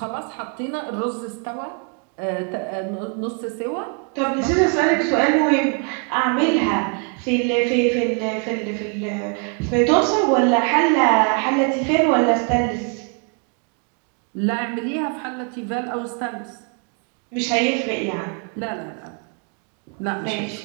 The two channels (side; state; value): left; quieter; 38.3 dB